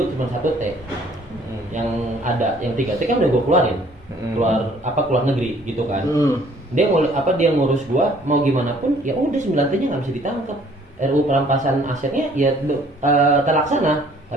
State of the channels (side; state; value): both; normal; correlation 0.58